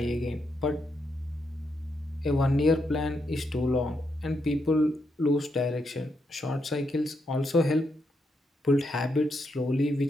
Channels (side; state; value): both; normal; correlation 0.81